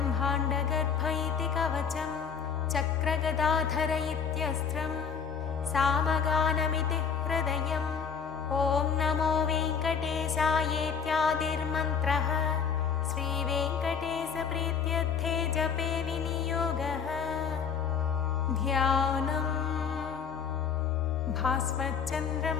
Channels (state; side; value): quieter; right; 6.7 dB